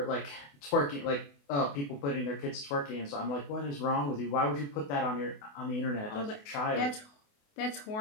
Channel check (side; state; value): right; late; 28 ms